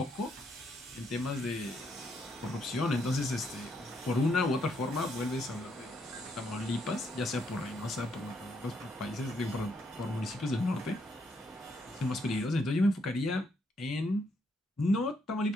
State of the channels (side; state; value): both; normal; correlation 0.75